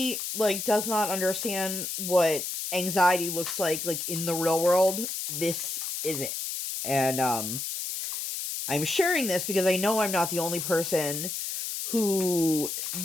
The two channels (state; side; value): noise; left; hiss, 4 dB below the sound